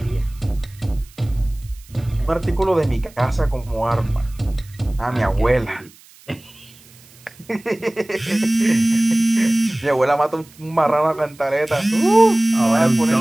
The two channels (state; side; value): noise; right; hiss, 25 dB below the sound